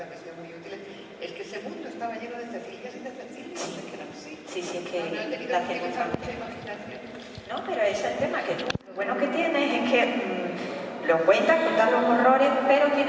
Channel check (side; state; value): both; identical; correlation 1.00